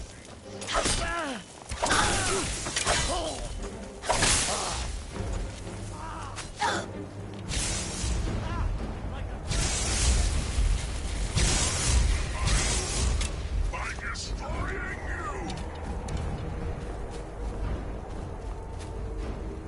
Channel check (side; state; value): both; identical; correlation 1.00